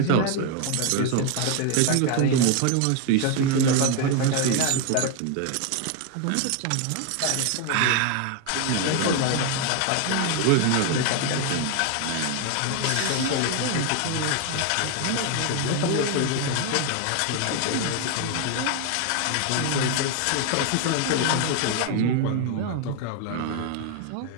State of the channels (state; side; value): different; both; correlation 0.01